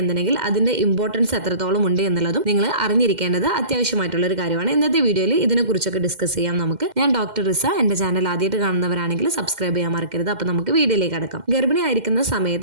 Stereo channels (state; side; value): late; left; 2.1 ms